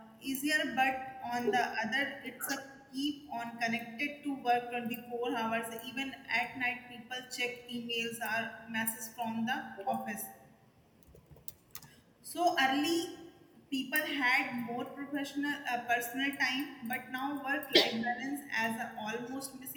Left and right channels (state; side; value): identical; both; correlation 1.00